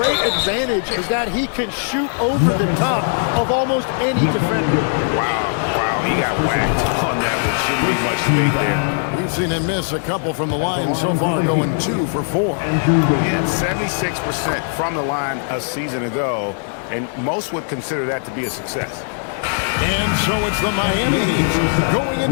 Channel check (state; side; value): silent; right; 65 dB below the other